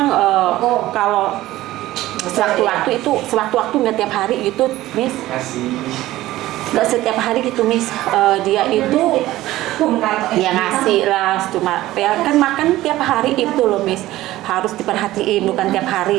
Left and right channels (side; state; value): left; quieter; 16.1 dB